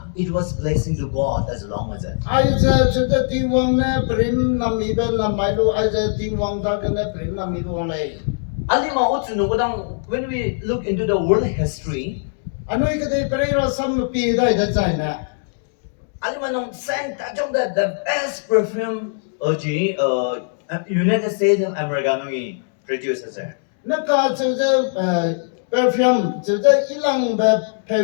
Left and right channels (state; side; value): silent; right; digital silence